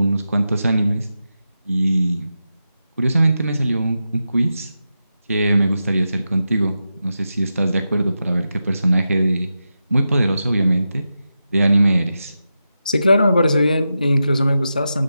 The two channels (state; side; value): inverted; both; correlation -0.90